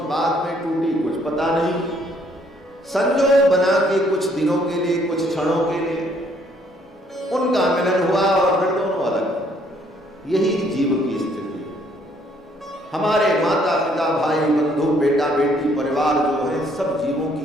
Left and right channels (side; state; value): both; normal; correlation 0.65